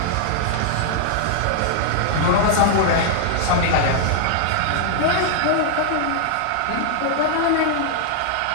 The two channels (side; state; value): both; different; correlation 0.00